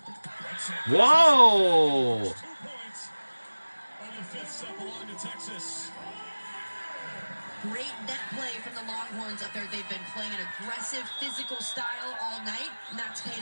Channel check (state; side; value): inverted; both; correlation -1.00